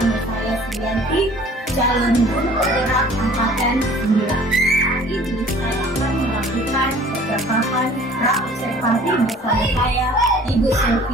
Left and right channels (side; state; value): both; normal; correlation 0.50